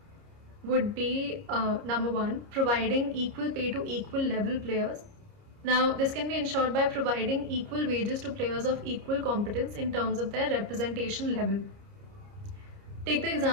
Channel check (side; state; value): left; late; 29 ms